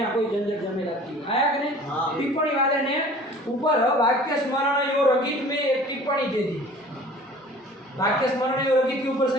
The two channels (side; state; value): both; normal; correlation 0.47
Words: कोई झंझट झमेला की आया कि नहीं टिप्पणी वाले ने ऊपर वाक्य स्मरण यो रंगित में एक टिप्पणी दे दी वाक्य स्मरण यो रंगित के ऊपर